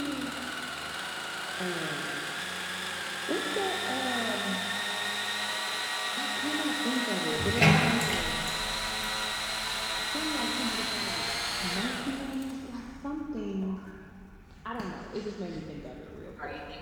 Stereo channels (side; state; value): both; identical; correlation 1.00